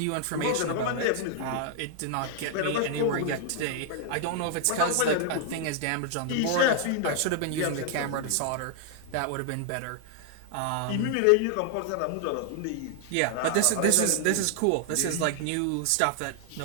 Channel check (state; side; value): different; both; correlation 0.00